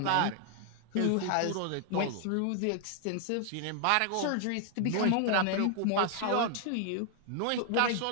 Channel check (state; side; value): different; both; correlation 0.00